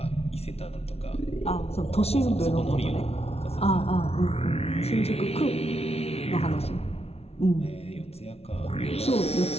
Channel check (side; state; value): right; late; 0.30 ms